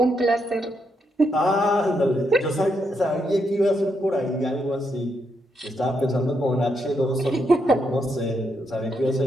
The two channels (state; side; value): normal; both; correlation 0.80